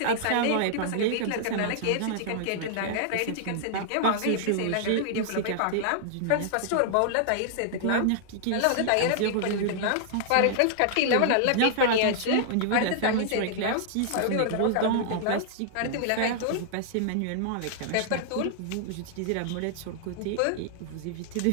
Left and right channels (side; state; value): both; different; correlation -0.01